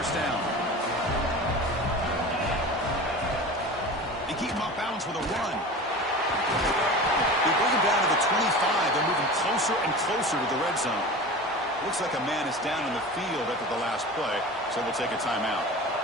down. keep him off balance with a run. They bring him down to the 25. They're moving closer and closer to the red zone. Looks like a man is down in the field after the last play, so we'll take a timeout.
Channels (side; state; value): both; normal; correlation 0.34